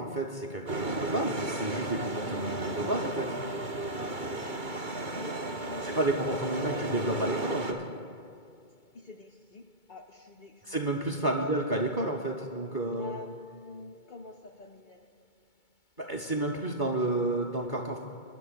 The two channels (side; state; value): right; late; 2.2 ms